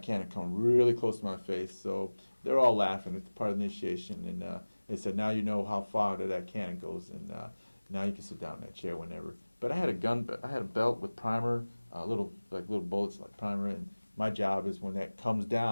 cannon come really close to my face. So they're all laughing. It's part of the initiation. And they said, now you know how far that cannon goes, and now you can sit down in that chair whenever. But I had a belt with primer, little bullets like primer, and my job is when that comes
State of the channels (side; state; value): both; inverted; correlation -1.00